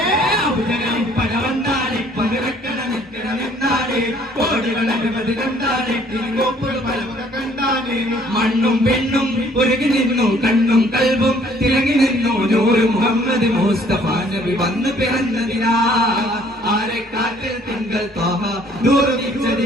അബുജകലി പരവന്താടി മരവെക്കര നിന്നാടി കോടികളെ കണ്ടാലെ കോപ്പുകൾ പലവുകൾ കണ്ടാലേ മണ്ണും പെണ്ണും ഒരുങ്ങി നിന്നു കണ്ണും കൽബും തിളങ്ങി നിന്നു നൂറ് മുഹമ്മദ് മുസ്തഫ നബി വന്നു പിറന്നതിനാ ആരെ കാറ്റിൽ തിങ്കൾ തോഹ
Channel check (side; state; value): both; normal; correlation 0.60